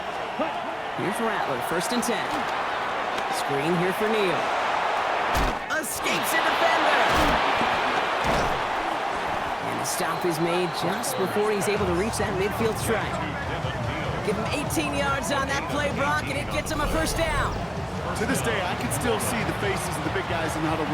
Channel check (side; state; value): both; identical; correlation 1.00